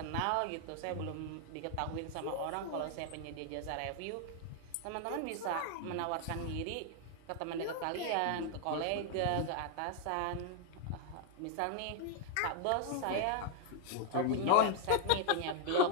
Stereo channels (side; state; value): both; different; correlation 0.00